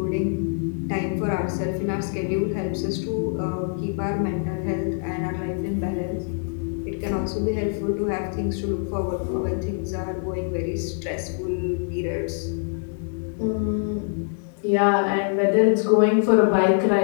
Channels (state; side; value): silent; right; 56 dB below the other